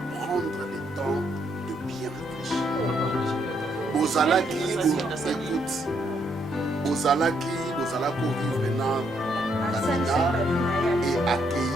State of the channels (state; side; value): normal; both; correlation 0.74